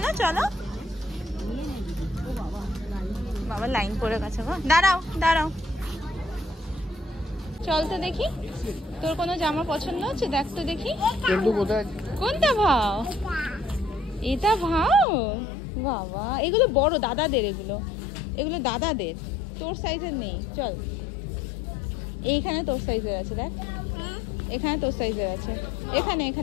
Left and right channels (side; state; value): right; drops out; at 15.1 s